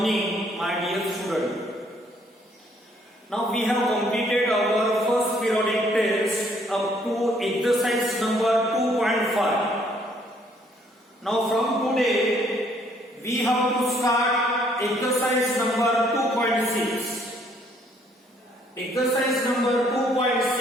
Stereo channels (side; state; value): both; normal; correlation 0.65